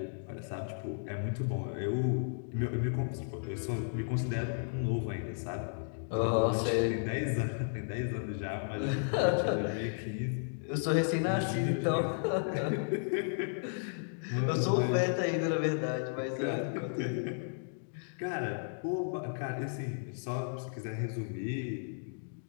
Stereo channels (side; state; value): right; silent; digital silence